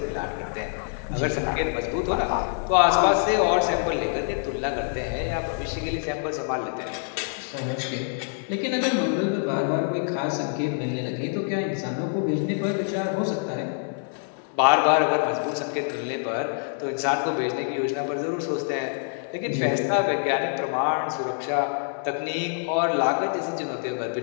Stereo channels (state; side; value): silent; right; 61 dB below the other